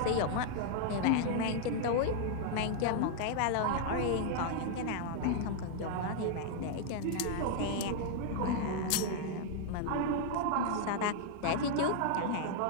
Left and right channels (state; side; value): different; both; correlation 0.00